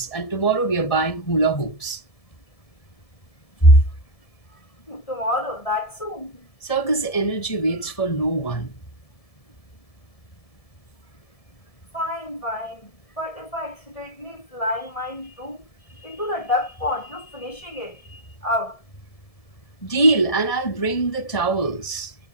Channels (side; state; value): right; late; 1.7 ms